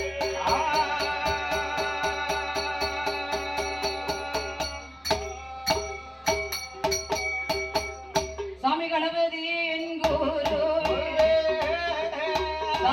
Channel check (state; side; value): identical; both; correlation 1.00